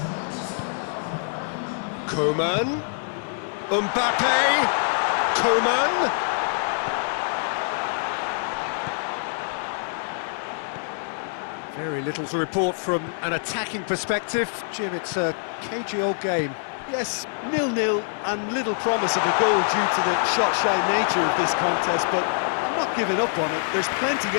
Coman. Mbappe. Coman. Very little to report from an attacking perspective. Jim, it's a cagey old game. Yes, 0-0 and little promise of a goal due to the shot-shy nature of this contest, but I'm not giving up on it. There's plenty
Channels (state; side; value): silent; right; 62 dB below the other